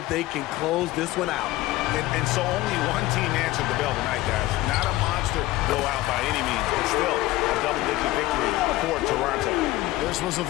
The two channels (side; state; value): right; quieter; 17.3 dB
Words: if they can close this one out. And so only one team answered the bell tonight, guys. Not a monster blowout by any means, but still a double-digit victory for Toronto. This was a